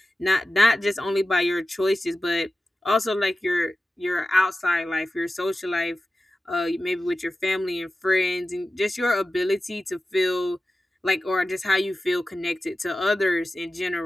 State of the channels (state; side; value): normal; both; correlation 0.94